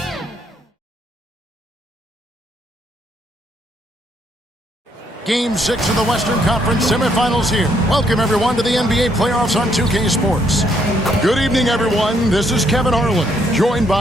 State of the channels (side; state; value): both; normal; correlation 0.72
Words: Game 6 of the Western Conference semifinals here. Welcome, everyone, to the NBA playoffs on 2K Sports. Good evening, everyone. This is Kevin Harlan, joined